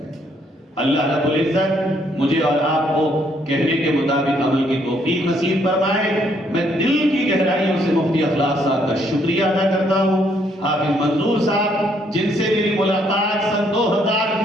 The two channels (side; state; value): both; normal; correlation 0.69